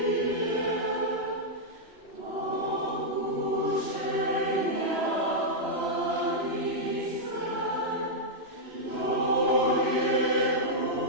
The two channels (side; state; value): left; late; 3.0 ms